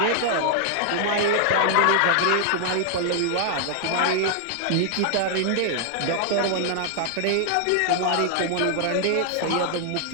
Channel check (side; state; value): both; different; correlation 0.00